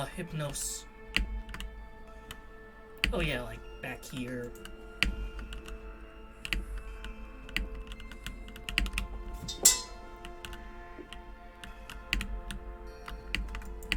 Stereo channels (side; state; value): both; identical; correlation 1.00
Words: Hypnos? Oh yeah, like back here.